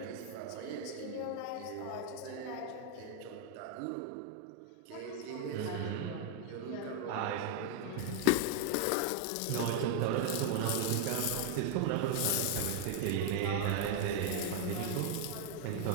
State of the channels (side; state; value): both; different; correlation 0.00